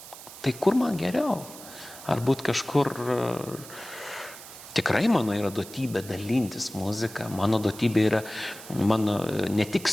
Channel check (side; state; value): right; noise; hiss, 15 dB below the sound